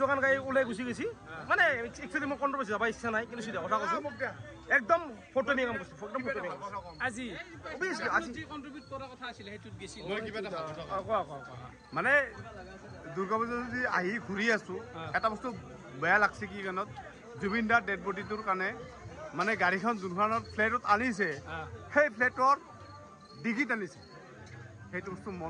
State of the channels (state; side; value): identical; both; correlation 1.00